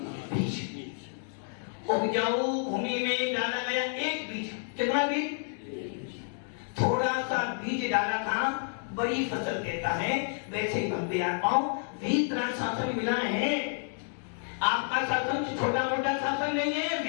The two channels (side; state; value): right; silent; digital silence